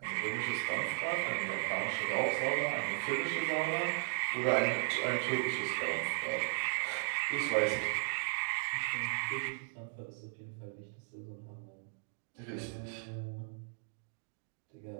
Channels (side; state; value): left; silent; digital silence